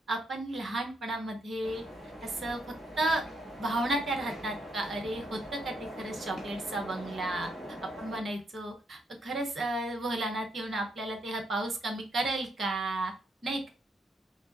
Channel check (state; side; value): normal; both; correlation 0.76